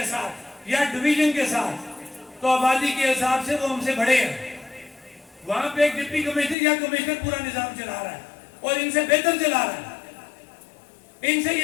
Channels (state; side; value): drops out; right; at 6.6 s